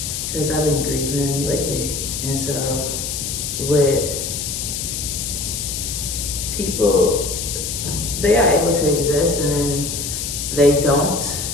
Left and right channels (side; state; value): left; noise; hiss, 4 dB below the sound